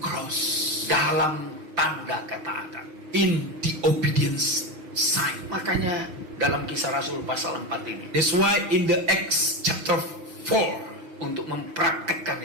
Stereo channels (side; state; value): left; late; 6.3 ms